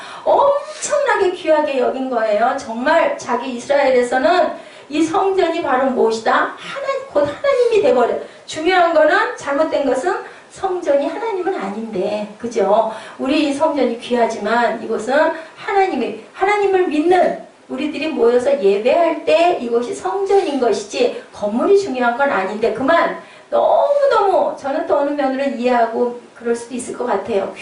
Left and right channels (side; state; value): both; identical; correlation 1.00